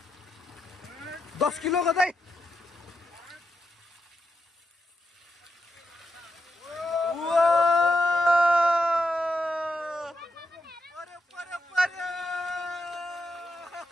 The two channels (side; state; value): both; normal; correlation 0.84